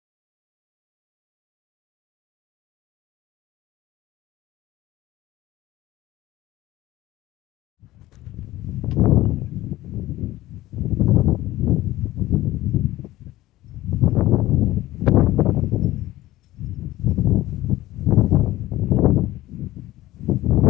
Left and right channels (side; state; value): right; quieter; 16.5 dB